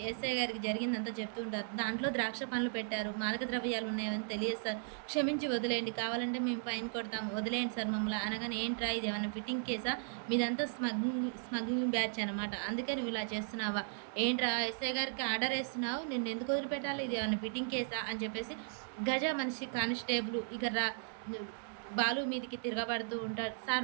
ఎస్ఐ గారికి జరిగిందంతా చెప్తూ ఉంటారు. దాంట్లో ద్రాక్ష పండ్లు పెట్టారు. మాదక ద్రవ్యాలు ఉన్నాయని తెలియదు సార్. క్షమించి వదిలేయండి. కావాలంటే మేము ఫైన్ కొడతాము. వదిలేయండి సార్ మమ్మల్ని అనగానే ఏంట్రా ఇదేమన్నా ఫిట్టింగ్ కేసా? మీదంతా స్మగ్లింగ్ బ్యాచ్ అనమాట. అందుకే నువ్వు ఇలా చేస్తున్నావా? ఏంట్రా ఎస్ఐ గారికి ఆర్డర్ ఏస్తున్నావు? నిన్నెందుకు వదిలిపెట్టాలి? ఇది ఏమన్నా ఫిట్టింగ్ కేసా? అని చెప్పేసి గజ మనిషి కానిస్టేబుల్ ఇక బాలు మీదికి తిరగబడుతూ ఉంటాడు. సార్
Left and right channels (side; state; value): left; silent; digital silence